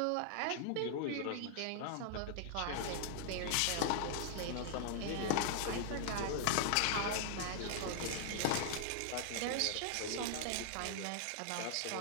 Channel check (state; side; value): different; both; correlation -0.01